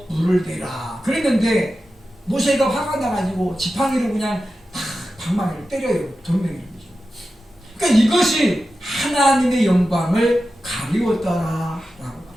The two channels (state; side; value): normal; both; correlation 0.92